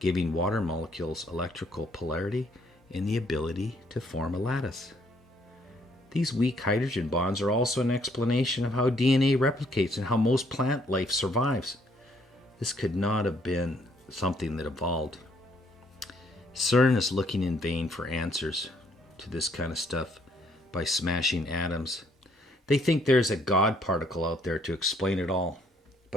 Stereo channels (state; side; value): normal; both; correlation 0.67